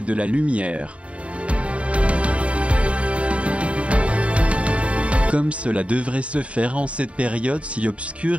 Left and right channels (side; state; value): left; late; 0.063 ms